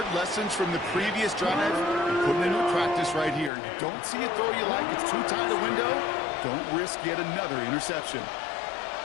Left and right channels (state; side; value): drops out; right; at 3.5 s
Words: lessons from the previous drive and putting it into practice right here. You don't see a throw you like, it's too tight a window. Don't risk yet another interception.